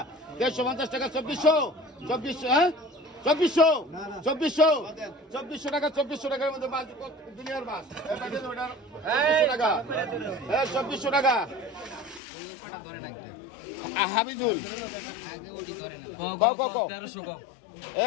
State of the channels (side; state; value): right; drops out; at 12.2 s